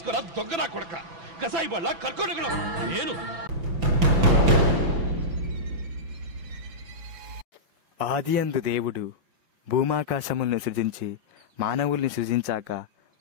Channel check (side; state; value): left; late; 6.0 ms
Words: దొంగనా కొడక, కసాయి బళ్ళ కర్కోడగడం నేను. ఆదియందు దేవుడు భూమాకాశములను సృజించి మానవుల్ని సృజించాక